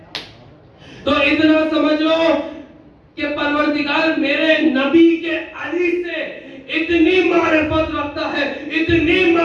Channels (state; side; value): identical; both; correlation 1.00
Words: تو اتنا سمجھ لو کہ پروردگار میرے نبی کے علی سے اتنی معرفت رکھتا ہے, اتنی